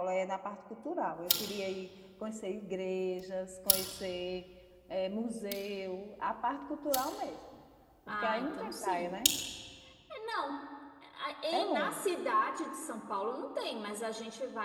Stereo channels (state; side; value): identical; both; correlation 1.00